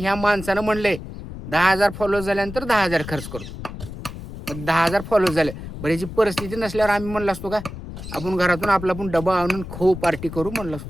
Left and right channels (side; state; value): left; noise; rumble, 10 dB below the sound